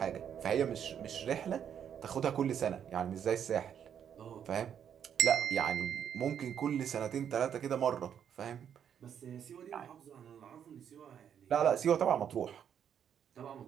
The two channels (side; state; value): left; quieter; 8.7 dB